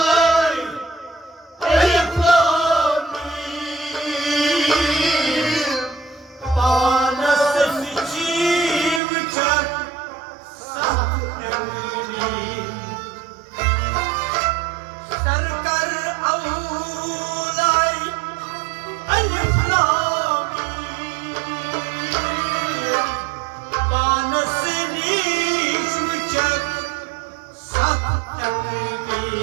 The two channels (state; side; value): drops out; left; at 9.0 s